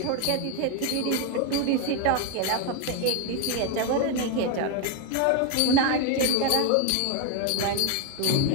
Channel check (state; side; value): different; both; correlation 0.01